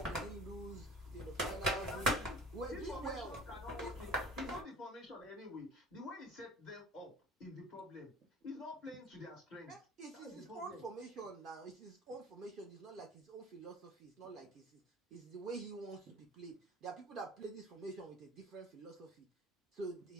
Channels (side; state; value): both; normal; correlation 0.43